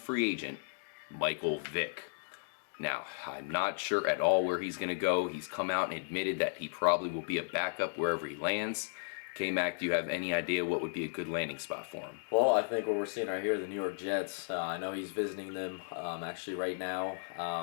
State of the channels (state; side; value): silent; right; digital silence